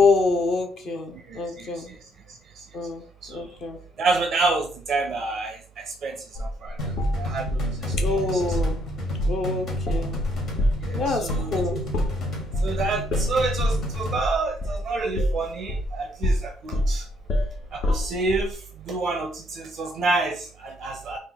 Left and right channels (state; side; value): normal; both; correlation 0.70